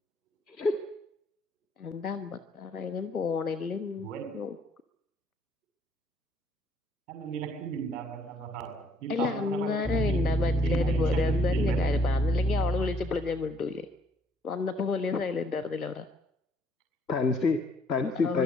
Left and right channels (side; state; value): both; normal; correlation 0.65